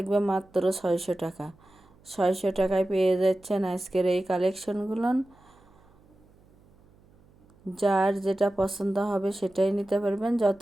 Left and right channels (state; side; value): noise; right; hum, 29 dB below the sound